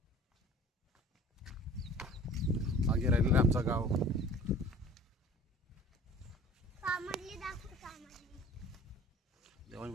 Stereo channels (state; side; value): normal; both; correlation 0.46